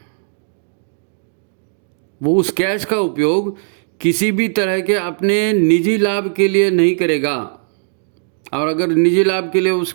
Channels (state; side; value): silent; left; digital silence